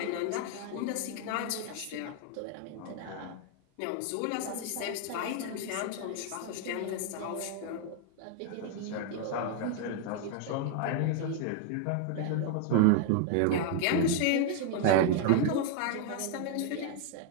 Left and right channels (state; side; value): different; both; correlation 0.00